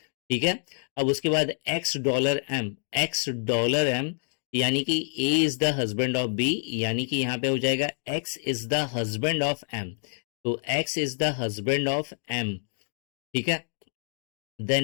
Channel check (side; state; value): right; silent; digital silence